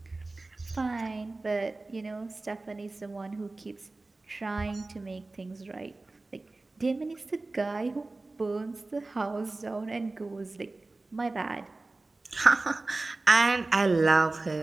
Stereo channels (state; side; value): quieter; left; 3.2 dB